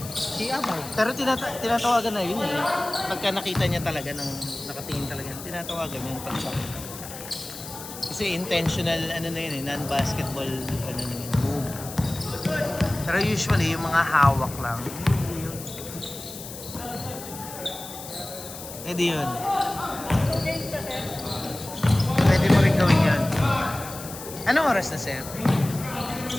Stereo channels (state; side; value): noise; left; hiss, 12 dB below the sound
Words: Pero tinatawagan na yun eh. Pagka nakita niya talaga, nakatingin talaga, tinatawagan niya yung pag-chop. Kasi intentional, non-basketball, move. Pero usually, yung mga hawak lang, hindi yun. Pwede mo rin gawin yun. Anong oras na, sir?